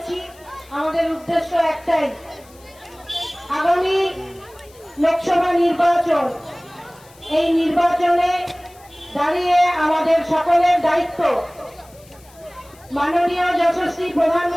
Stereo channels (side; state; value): left; noise; hiss, 26 dB below the sound